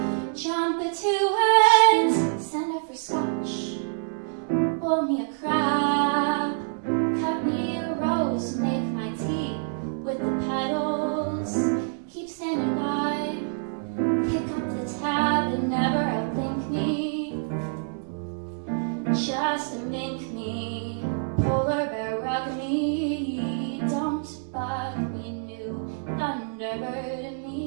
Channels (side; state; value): left; silent; digital silence